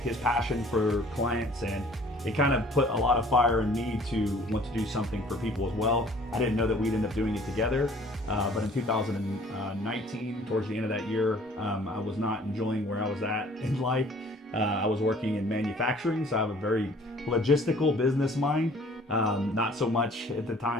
his passion for clients, and it kind of put a lot of fire in me to want to do something for people as well. I didn't know that we'd end up doing it together, but in 2019, towards the end of that year, I was not enjoying where I was at in life. I was working in manufacturing, so I have a very logistical business mind. Not so much at the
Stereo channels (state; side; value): normal; both; correlation 0.54